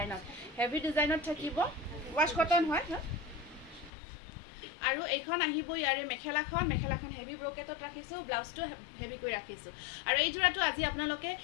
ডিজাইনত থাকিব ৱাছ কটন হয় আৰু এইখন আহিব ইয়াৰে মেখেলাখন হেভি ব্ৰকেটত ৰাখিছোঁ ব্লাউজটো হেভি কৰি ৰাখিছোঁ আৰু এই যোৰাটো আজি আপোনালোকে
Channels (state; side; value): drops out; right; at 3.9 s